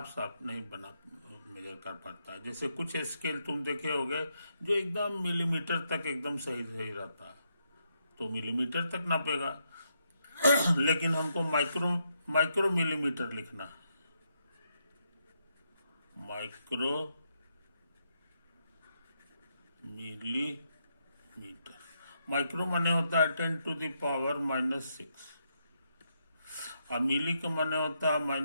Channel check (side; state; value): both; inverted; correlation -0.79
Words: साफ नहीं बना मेजर कर पाता है। जैसे कुछ स्केल तुम देखे होगे जो एकदम मिलीमीटर तक एकदम सही सही रहता है, तो मिलीमीटर तक नापेगा लेकिन हमको माइक्रो मिलीमीटर लिखना है, माइक्रो मिलीमीटर। माइक्रो माने होता है 10⁻⁻⁶, और मिली का माने होता है